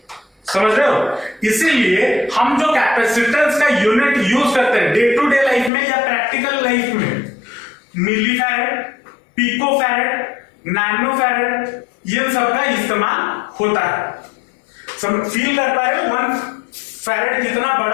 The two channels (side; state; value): right; drops out; at 5.7 s